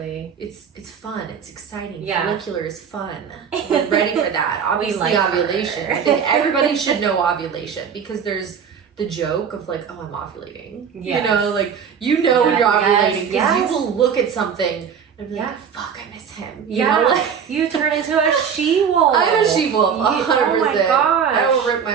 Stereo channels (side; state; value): left; quieter; 7.2 dB